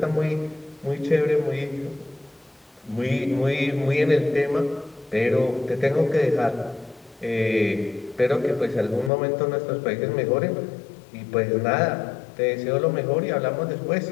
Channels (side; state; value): right; drops out; at 9.1 s